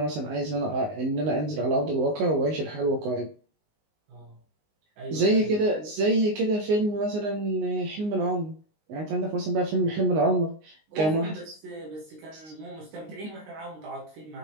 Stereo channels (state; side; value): late; left; 19 ms